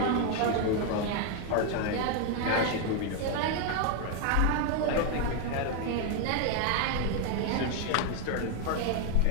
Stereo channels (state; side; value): different; both; correlation 0.01